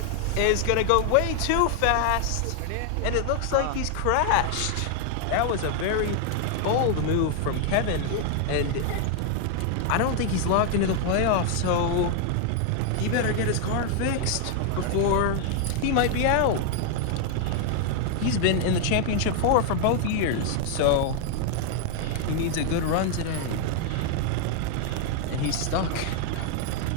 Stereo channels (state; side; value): different; both; correlation 0.00